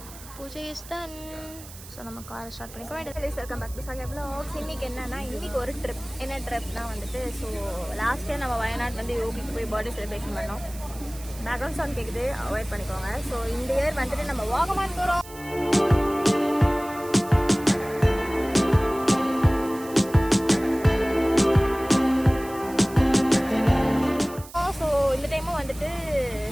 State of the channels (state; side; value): noise; right; hiss, 17 dB below the sound